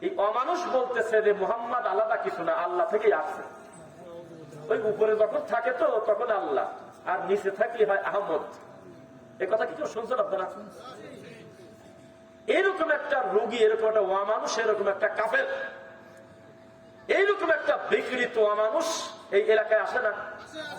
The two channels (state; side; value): identical; both; correlation 1.00